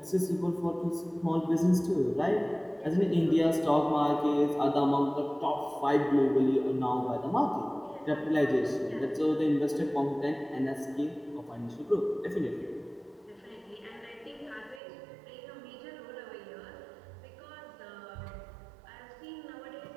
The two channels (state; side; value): drops out; left; at 14.8 s